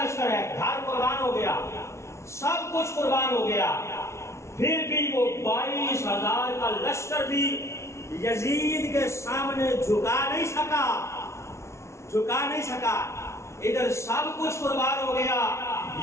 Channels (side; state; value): right; late; 0.13 ms